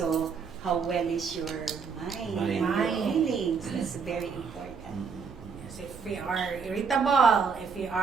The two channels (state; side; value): quieter; left; 5.7 dB